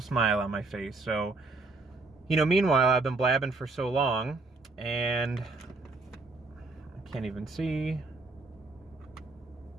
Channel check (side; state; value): left; quieter; 3.5 dB